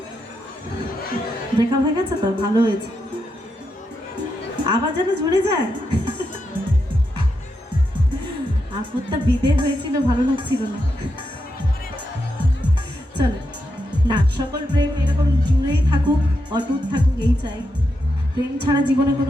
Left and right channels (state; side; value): normal; both; correlation 0.84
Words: ব্রেকআপ হয়ে গেছে তো ভালো হয়েছে, আবার যেন জুড়ে যায়। আপদটা বিদে হয়েছিল, ভালো লাগছিল না। চলো না, সকল প্রেম এরকম জুড়েই থাকুক, অটুট থাকুক, এই চাই। প্রেম ছাড়া জীবনে